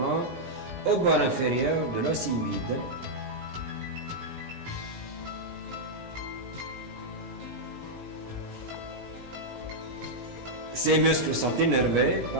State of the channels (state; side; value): late; left; 17 ms